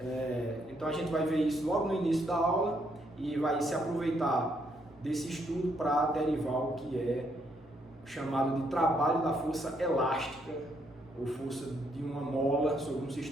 Então a gente vai ver isso logo no início da aula e vai se aproveitar desse estudo para derivar o que é chamado de trabalho da força elástica ou força de uma mola sobre um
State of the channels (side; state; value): both; normal; correlation 0.73